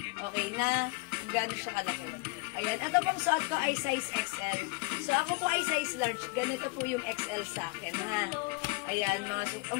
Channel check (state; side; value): quieter; right; 27.2 dB